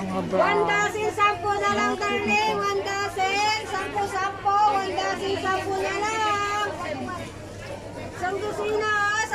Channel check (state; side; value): identical; both; correlation 1.00